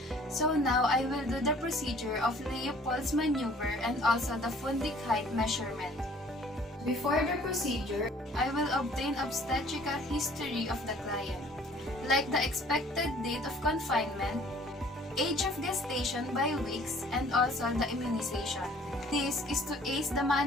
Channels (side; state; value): both; normal; correlation 0.54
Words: So now I will do the procedure of Leopold's maneuver and also the fundic height measurement. Before the procedure, I will obtain obstetrical history of the client, like the expected date of confinement, age of gestation by weeks, and also the immunization. This is to aid the